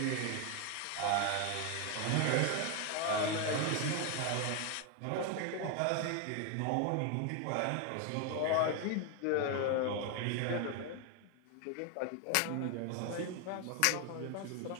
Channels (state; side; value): different; both; correlation 0.01